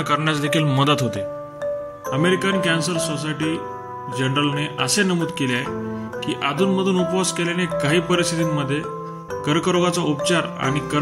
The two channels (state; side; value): identical; both; correlation 1.00